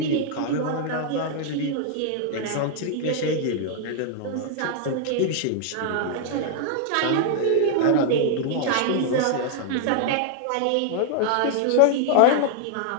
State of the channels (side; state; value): both; different; correlation 0.00